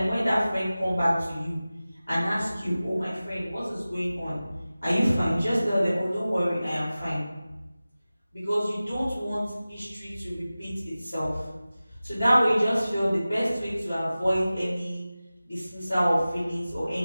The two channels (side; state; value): both; inverted; correlation -0.97